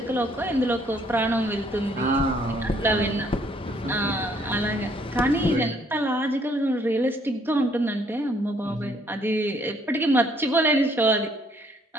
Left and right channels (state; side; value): normal; both; correlation 0.65